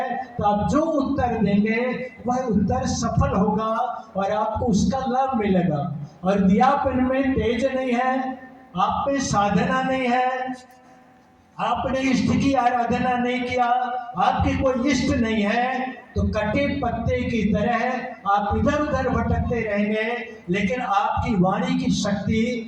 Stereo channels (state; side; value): identical; both; correlation 1.00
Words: तो आप जो उत्तर देंगे वह उत्तर सफल होगा और आपको उसका लाभ मिलेगा। और दियापन में तेज नहीं है, आप में साधना नहीं है, आपने इष्ट की आराधना नहीं किया, आपके कोई इष्ट नहीं है, तो कटे पत्ते की तरह आप इधर उधर भटकते रहेंगे, लेकिन आपकी वाणी की